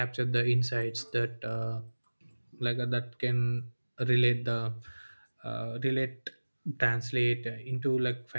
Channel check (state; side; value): inverted; both; correlation -1.00